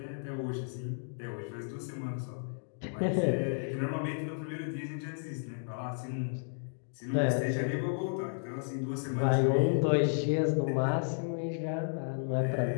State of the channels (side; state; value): right; silent; digital silence